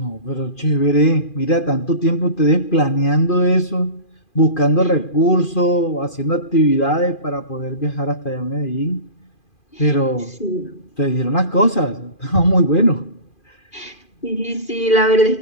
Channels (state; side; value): late; right; 2.4 ms